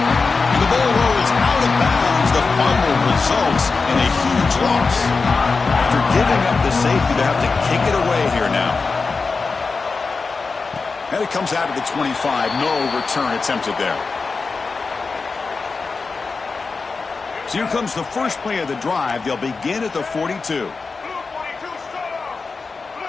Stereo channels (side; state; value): right; quieter; 4.4 dB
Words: the ball rolls out of bounds. The fumble results in a huge loss. After giving up the safety, they have to kick it away here now. And it comes out of the 25. No return attempted there. So here comes the first play of the drive. They'll begin at the 42.